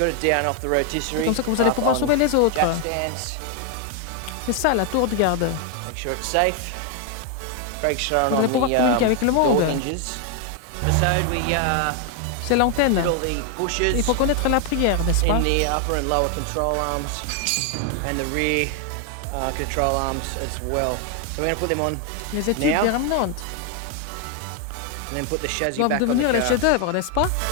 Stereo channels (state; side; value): different; both; correlation 0.00